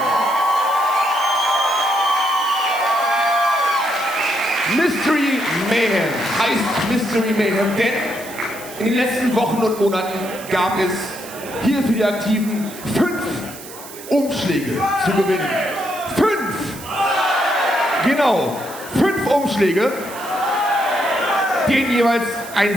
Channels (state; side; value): noise; right; hiss, 15 dB below the sound